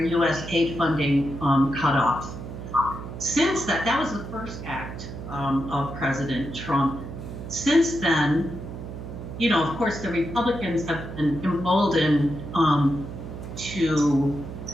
aid funding cut off. Since that was the first act of President Trump. Since then, of course, the Republicans have been emboldened to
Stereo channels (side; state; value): right; noise; hum, 9 dB below the sound